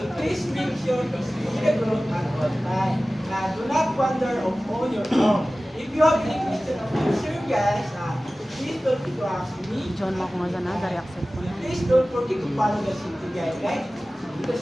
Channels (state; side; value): normal; both; correlation 0.97